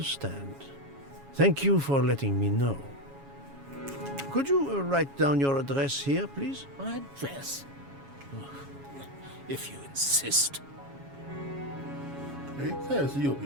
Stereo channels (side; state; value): left; late; 7.2 ms